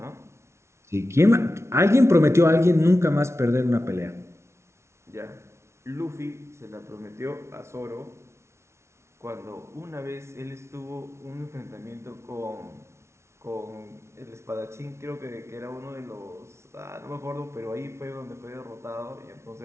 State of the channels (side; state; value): left; late; 0.13 ms